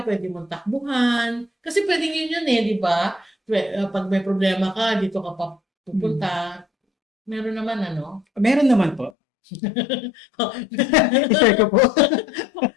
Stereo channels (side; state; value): right; drops out; at 9.1 s